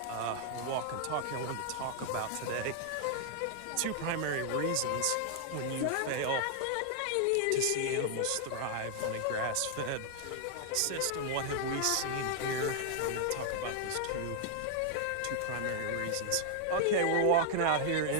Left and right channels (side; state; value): both; different; correlation 0.00